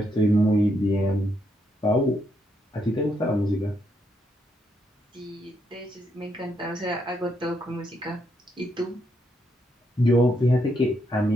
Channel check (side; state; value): both; normal; correlation 0.77